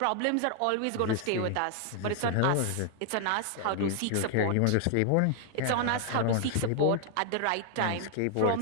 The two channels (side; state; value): both; different; correlation 0.00